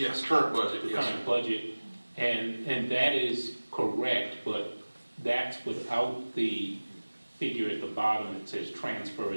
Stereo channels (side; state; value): both; inverted; correlation -1.00